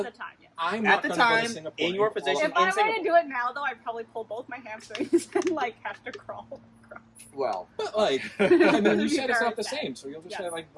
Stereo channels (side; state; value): both; identical; correlation 1.00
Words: the time, yes. I'm At not the gonna go to time, Singapore in your and position, If I were Singapore. to do it now, though, I'd probably pull both my hamstrings and like have to crawl. Well, But like, I mean, you It'd be said it's very not the sad. same, so you'll just Yes. say like